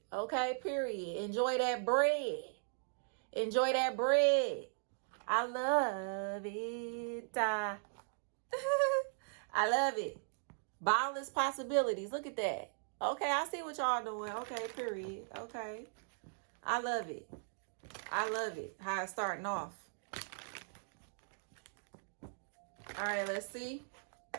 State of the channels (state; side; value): silent; left; digital silence